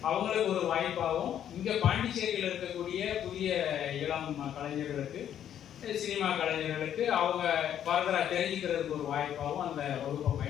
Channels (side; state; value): right; quieter; 10.1 dB